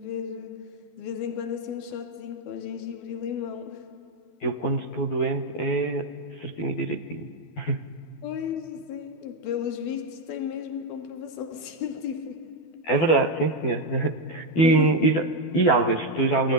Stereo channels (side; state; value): right; late; 12 ms